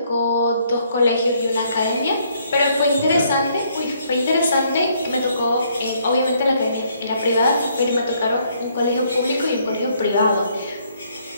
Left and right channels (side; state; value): both; inverted; correlation -0.68